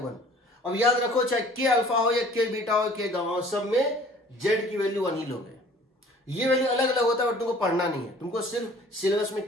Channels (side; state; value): both; normal; correlation 0.51